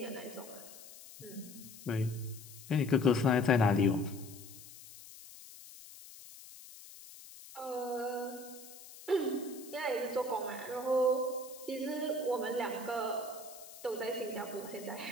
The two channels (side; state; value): left; noise; hiss, 17 dB below the sound